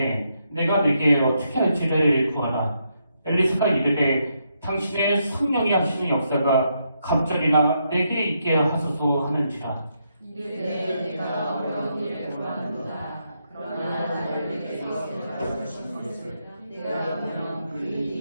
내가 내게 어떻게 할지를 구하라. 엘리사가 이르되 당신의 성령이 하시는 역사가 갑절이나 내게 있게 하소서 하는지라. 이르되 내가 어려운 일을 구하는도다. 그러나 나를 내게서 데려갈 수 있는 것을 내가 보면 그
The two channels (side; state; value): both; inverted; correlation -0.79